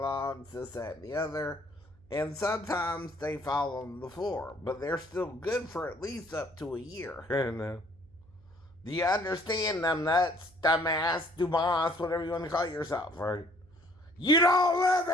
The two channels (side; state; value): right; noise; hum, 27 dB below the sound